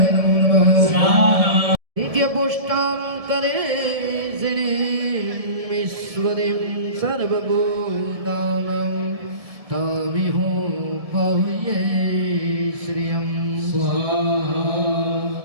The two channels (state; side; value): late; left; 1.7 ms